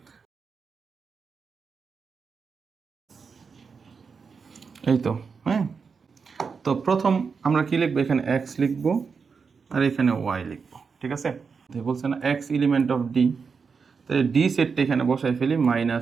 এই তো। হ্যাঁ, তো প্রথম আমরা কি লিখবো, এখানে x লিখবো আর এখানে y লিখবো। ঠিক আছে, বলছে না x এলিমেন্ট অফ ডি, তাহলে ডি সেটটা এখানে বসাই ফেলি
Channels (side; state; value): left; quieter; 5.5 dB